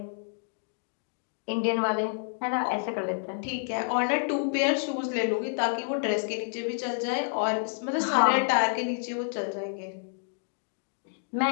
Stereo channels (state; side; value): silent; right; digital silence